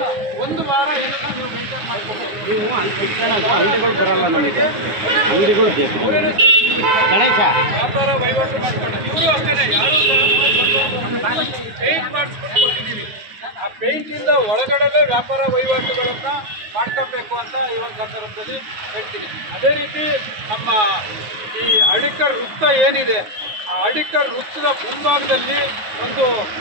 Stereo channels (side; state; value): left; late; 9.5 ms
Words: ಒಂದು ವಾರ ಇದನ್ನ ನೀವು ಮೇಂಟೈನ್ ಮಾಡ್ಕೊಬೇಕು. ಗಣೇಶ ವ್ಯಾಪಾರ ವಹಿವಾಟು ಮಾಡ್ಕೊಂಡು ಇವರು ಅಷ್ಟೇ ಯಾರು ಪೇಂಟ್ ಮಾಡಿಸ್ಕೊಟ್ಟಿದ್ದೀವಿ. ಆ ಪೇಂಟಿಂದ ಒಳಗಡೆ ವ್ಯಾಪಾರ ವಹಿವಾಟುಗಳನ್ನು ಮಾಡ್ಕೊಬೇಕು ಅಂತ ಈ ಒಂದು ಸಂದರ್ಭದಲ್ಲಿ ಹೇಳ್ತೀನಿ. ಅದೇ ರೀತಿ ನಮ್ಮ ಈ ಹಳ್ಳಿಕರ್ ವೃತ್ತ ಏನಿದೆ, ಆ ಹಳ್ಳಿಕರ್ ವೃತ್ತದ ಮುಂಭಾಗದಲ್ಲಿ ಒಂದು